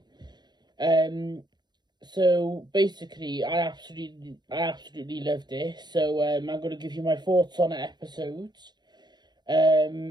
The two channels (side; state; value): left; late; 0.21 ms